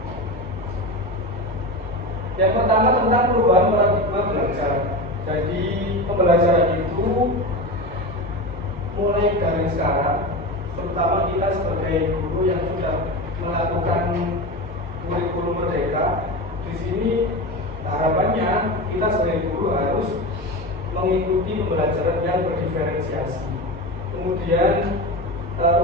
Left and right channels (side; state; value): both; normal; correlation 0.23